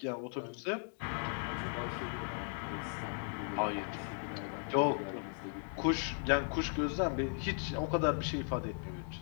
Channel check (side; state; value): right; silent; 53 dB below the other